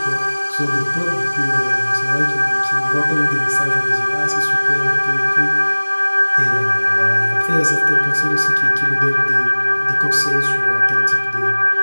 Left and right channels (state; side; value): inverted; both; correlation -1.00